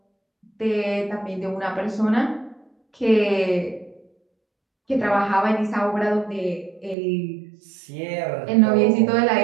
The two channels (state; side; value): drops out; left; at 7.0 s